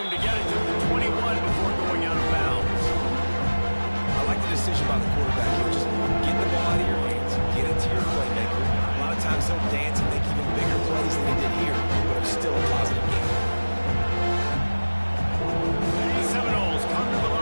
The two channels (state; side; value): inverted; both; correlation -1.00